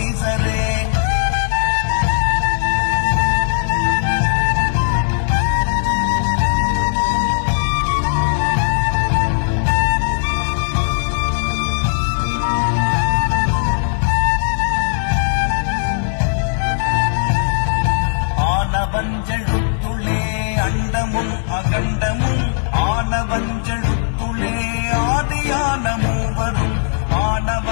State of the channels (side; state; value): right; silent; 57 dB below the other